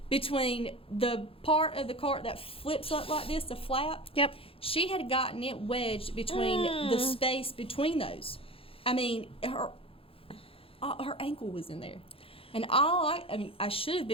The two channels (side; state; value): right; late; 0.27 ms